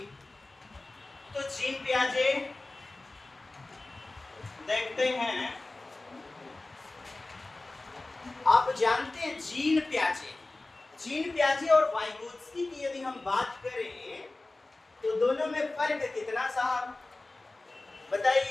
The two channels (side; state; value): right; quieter; 3.0 dB